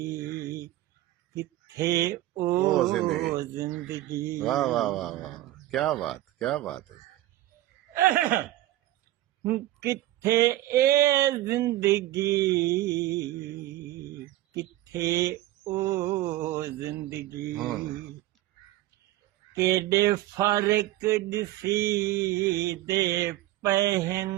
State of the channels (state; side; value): quieter; left; 15.3 dB